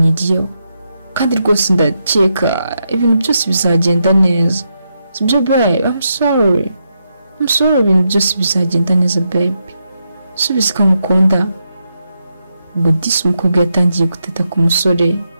kandi rwose ndakeka ibintu byose bizagenda neza sibyo babe? I'm sorry, ibintu byose bizagenda neza babe, subiza ko ngukunda. Ubwo disi umukobwa yatangiye guteta ku musore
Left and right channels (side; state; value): both; inverted; correlation -0.83